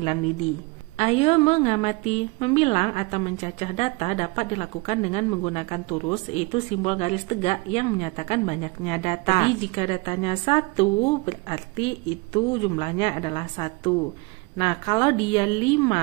lidi. Ayo mengamati. Membilang atau mencacah data dapat dilakukan dengan menggunakan turus, yaitu simbol garis tegak yang menyatakan banyaknya data. Jadi jika datanya 1, berarti itu jumlahnya adalah 1. Nah, kalau dia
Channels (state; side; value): quieter; left; 26.1 dB